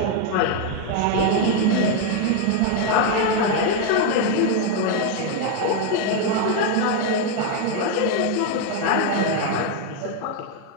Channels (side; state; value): both; different; correlation 0.01